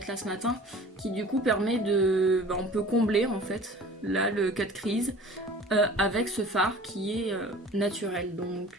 là ce matin, qui du coup permet de... on peut combler en fait, là le cut crease, avec ce fard qui est naturel. Donc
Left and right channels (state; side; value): normal; both; correlation 0.44